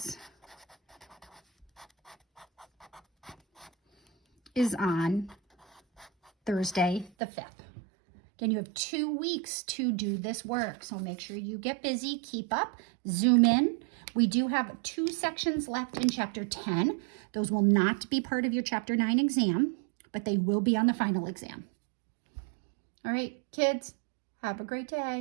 is on Thursday the 5th. Again, you have 2 weeks to do this work, so make sure you get busy, keep up, zoom in. We do have 2 sections left in Chapter 10. Those will not be part of your Chapter 9 exam, but they will be on the final exam. All right, kids, have a great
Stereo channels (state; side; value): drops out; left; at 7.1 s